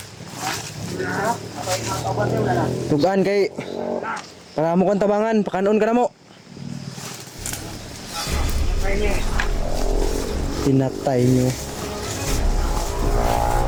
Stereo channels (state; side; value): identical; both; correlation 1.00